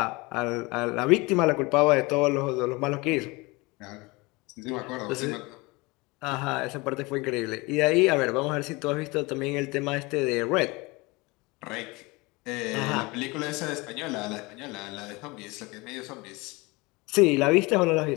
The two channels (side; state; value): right; quieter; 24.5 dB